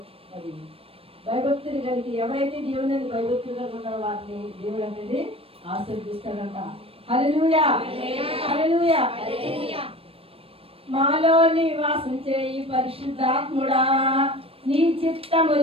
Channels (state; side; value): late; left; 0.28 ms